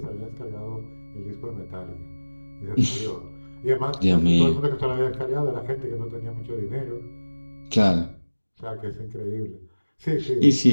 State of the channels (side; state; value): both; inverted; correlation -1.00